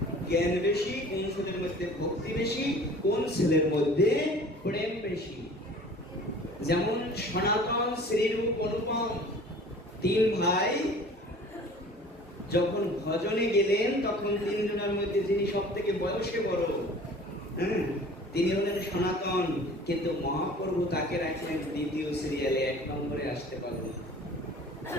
জ্ঞান বেশি, কোন ছেলের মধ্যে ভক্তি বেশি, কোন ছেলের মধ্যে প্রেম বেশি। যেমন সনাতন, শ্রীরূপ, অনুপম 3 ভাই যখন ভজনে গেলেন, তখন 3 জনের মধ্যে যিনি সব থেকে বয়সে বড়, তিনি হলেন সনাতন। কিন্তু মহাপ্রভু তাকে রাখলেন 2য় সিরিয়ালে, 1 নম্বরে আসতে পারলেন।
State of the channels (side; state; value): both; normal; correlation 0.46